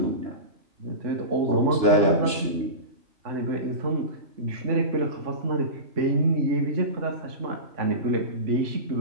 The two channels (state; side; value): late; left; 2.9 ms